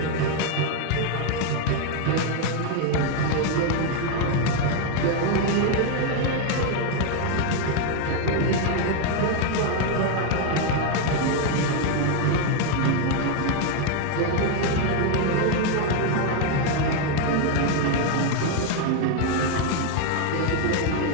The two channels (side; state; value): both; different; correlation 0.01